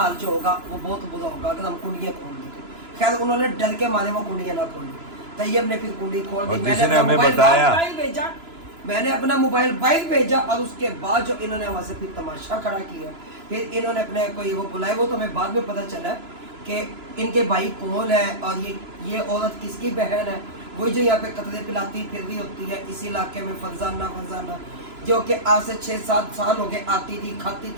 जो होगा वो बहुत बुरा होगा अगर हम कुंडियाँ खोल दें। खैर उन्होंने डर के मारे वो कुंडियाँ ना खोली। तैयब ने फिर कुंडी खोल दी, मैंने हमें बताया, भेजा, मैंने अपना मोबाइल बाइक भेजा, और उसके बाद जो इन्होंने वहाँ से फिर तमाशा खड़ा किया। फिर इन्होंने अपने कोई वो बुलाए, वो तो हमें बाद में पता चला कि इनके भाई कौन है और ये औरत किसकी बहन है, वही जो यहाँ पे कतरे पिलाती फिर रही होती है इस इलाके में, फरजाना, जो कि आज से 6-7 साल हो गए आती थी, खाती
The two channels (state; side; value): late; left; 3.0 ms